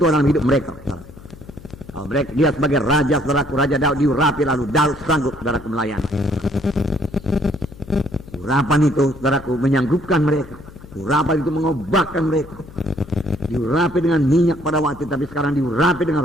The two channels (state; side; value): noise; left; hum, 19 dB below the sound